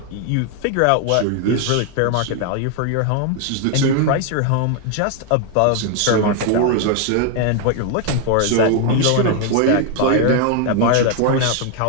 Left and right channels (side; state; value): both; different; correlation 0.01